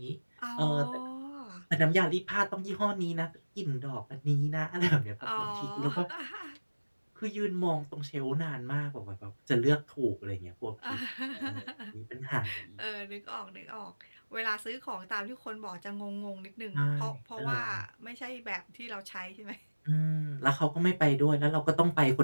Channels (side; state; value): both; inverted; correlation -1.00